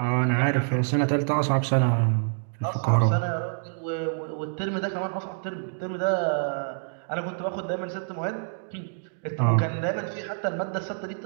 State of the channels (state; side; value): silent; left; digital silence